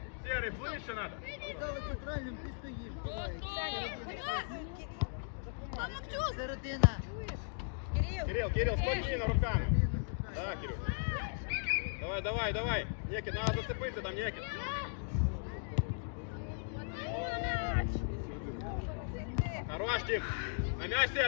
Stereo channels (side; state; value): right; silent; digital silence